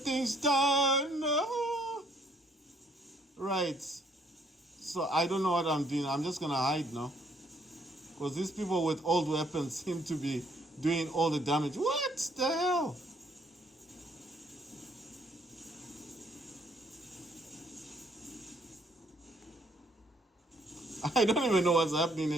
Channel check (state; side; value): normal; both; correlation 0.67